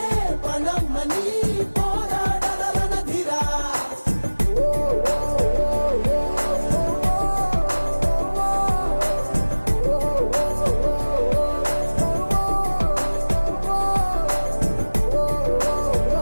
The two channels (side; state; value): both; inverted; correlation -1.00